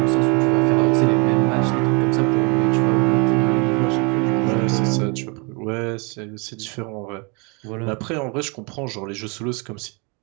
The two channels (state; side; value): quieter; left; 31.8 dB